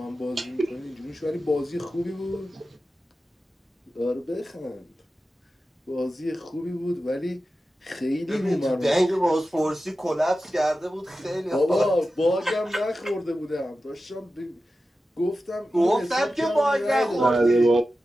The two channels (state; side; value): normal; both; correlation 0.93